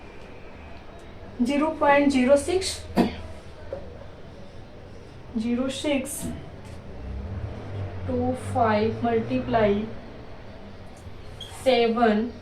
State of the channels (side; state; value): both; identical; correlation 1.00